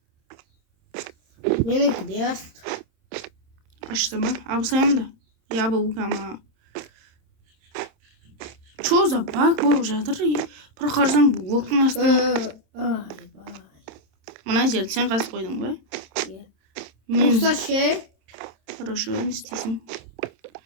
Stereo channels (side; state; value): left; late; 27 ms